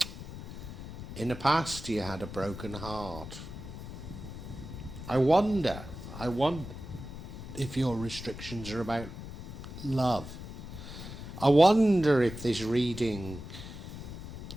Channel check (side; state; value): left; noise; rumble, 11 dB below the sound